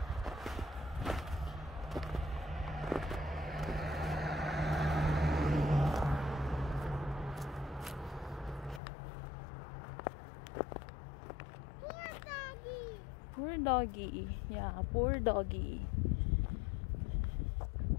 Poor doggy. Yeah, poor doggy.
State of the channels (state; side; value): drops out; right; at 8.8 s